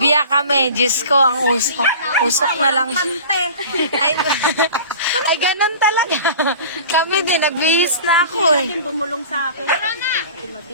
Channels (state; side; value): inverted; both; correlation -0.40